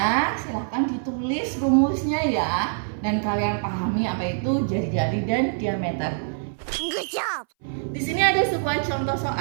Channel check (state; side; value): silent; left; 60 dB below the other